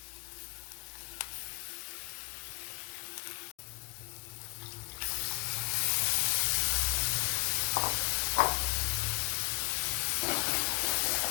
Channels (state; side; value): quieter; right; 29.4 dB